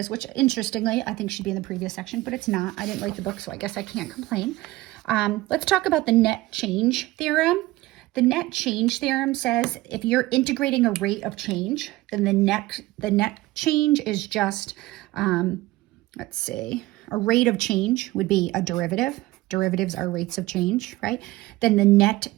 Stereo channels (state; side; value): quieter; left; 18.4 dB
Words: which interestingly, I think should be in the previous section, but it's not. I didn't write the book, so I guess I can't complain. Let's talk about the net change theorem. The net change theorem says if you're integrating a rate of change, then the net change is just, let's see, a rate of change would be a derivative. Derivatives are rates of change, right? Then the net